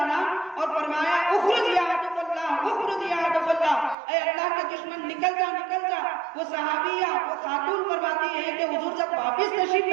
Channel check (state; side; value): drops out; left; at 4.0 s